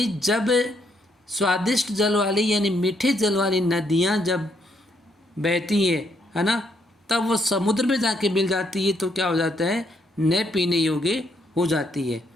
जब स्वादिष्ट जल वाली यानी मीठे जल वाली नदियाँ जब बहती है ना, तब वो समुद्र में जाके मिल जाती है तो क्या हो जाता है, न पीने योग्य हो जाती है।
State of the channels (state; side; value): normal; both; correlation 0.73